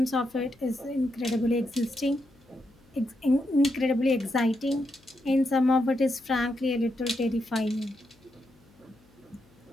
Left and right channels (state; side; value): noise; left; hum, 30 dB below the sound